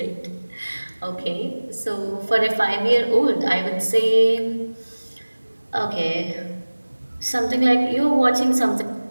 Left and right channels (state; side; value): inverted; both; correlation -1.00